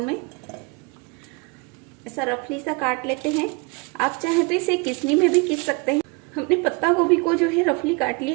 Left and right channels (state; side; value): quieter; left; 28.9 dB